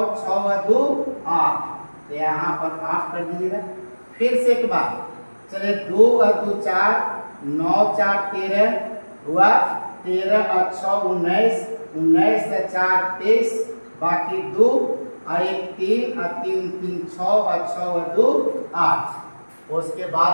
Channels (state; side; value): inverted; both; correlation -1.00